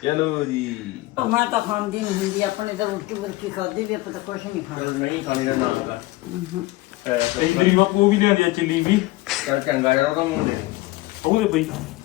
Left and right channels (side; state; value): right; quieter; 19.4 dB